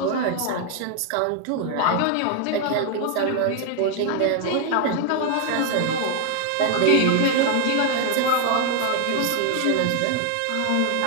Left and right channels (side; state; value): both; different; correlation 0.00